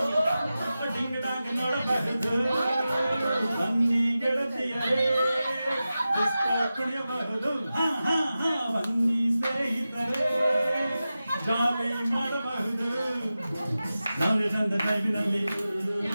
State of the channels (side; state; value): both; inverted; correlation -0.94